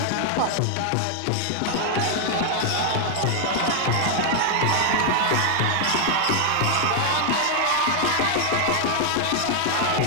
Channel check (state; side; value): different; both; correlation 0.00